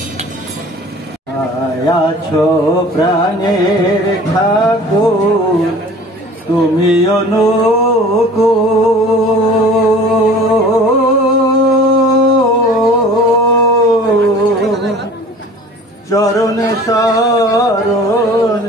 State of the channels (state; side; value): normal; both; correlation 0.44